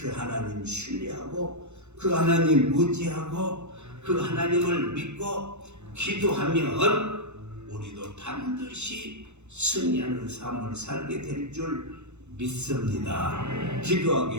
하나님 신뢰하고 그 하나님 의지하고 그 하나님을 믿고 기도하면 우리도 반드시 승리하는 삶을 살게 될 줄 믿습니다.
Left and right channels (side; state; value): left; late; 0.82 ms